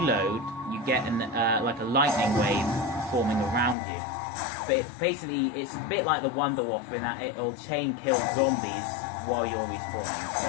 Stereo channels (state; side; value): drops out; right; at 3.8 s